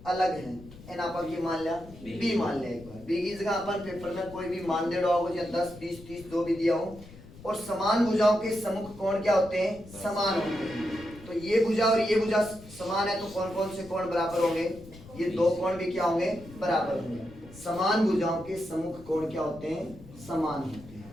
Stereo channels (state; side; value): noise; left; rumble, 19 dB below the sound